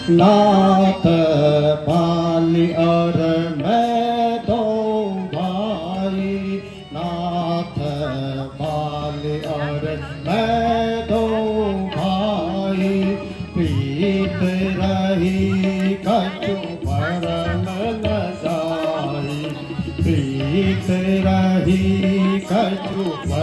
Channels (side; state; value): both; identical; correlation 1.00